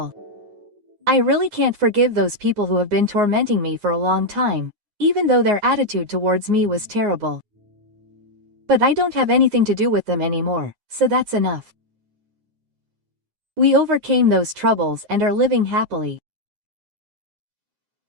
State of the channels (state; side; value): late; left; 9.6 ms